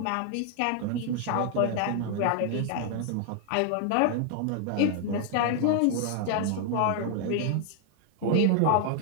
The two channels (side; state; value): both; different; correlation 0.00